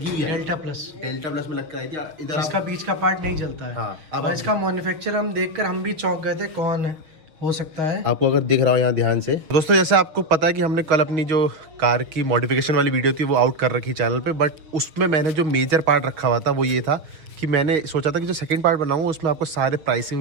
हुई है। डेल्टा प्लस में लग कर आई थी। इधर इसका बीच का पार्ट नहीं जलता है। हाँ, अब और इसका मैन्युफैक्चर हम देखकर हम भी चौंक गए थे, कौन है हो सकता है। आपको अगर दिख रहा हो यहाँ ध्यान से दोस्तों, जैसे आपको पता है कि हमने कल अपनी जो कार की मॉडिफिकेशन वाली वीडियो थी वो आउट कर रखी चैनल पे, बट उसमें मैंने जो मेजर पार्ट रखा हुआ था वो ये था कि मैंने सोचा था कि जो सेकंड पार्ट बनाऊंगा उसमें आपको सारे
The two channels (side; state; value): left; late; 6.3 ms